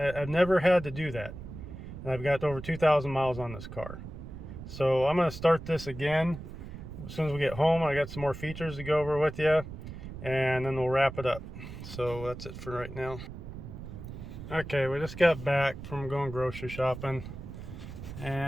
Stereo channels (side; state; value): right; noise; rumble, 11 dB below the sound